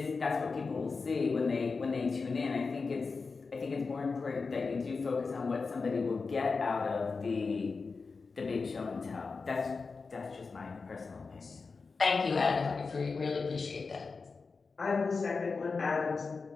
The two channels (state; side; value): quieter; right; 4.5 dB